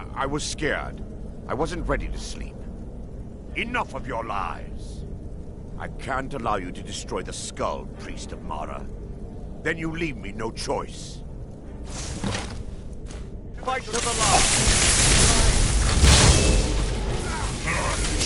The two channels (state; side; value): identical; both; correlation 1.00